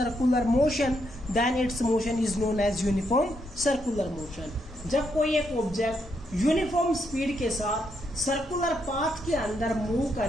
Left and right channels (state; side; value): normal; both; correlation 0.78